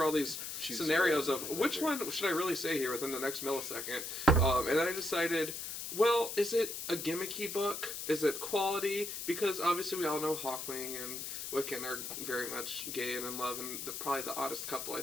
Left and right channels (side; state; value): left; noise; hiss, 6 dB below the sound